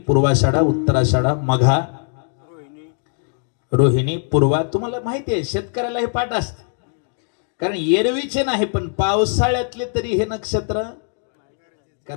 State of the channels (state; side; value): silent; right; 58 dB below the other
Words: पूर्वाषाढा, उत्तराषाढा, मघा, रोहिणी, पूर्वा. तुम्हाला माहिती आहे शेतकऱ्याला हे पाठ असते, कारण एरवीचे नाही पण पावसाळ्यातले तरी हे नक्षत्र,